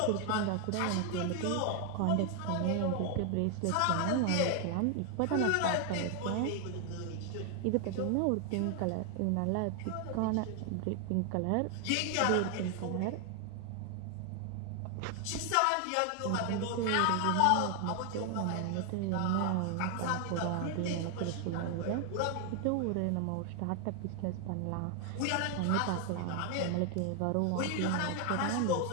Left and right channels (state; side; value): different; both; correlation 0.00